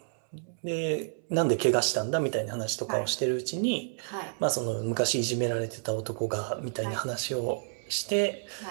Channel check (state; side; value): silent; left; 58 dB below the other